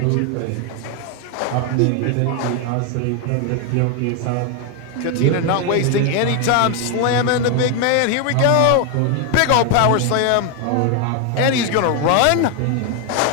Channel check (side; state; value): both; different; correlation 0.01